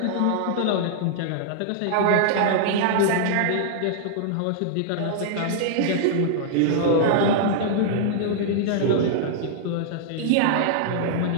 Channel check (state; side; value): different; both; correlation -0.01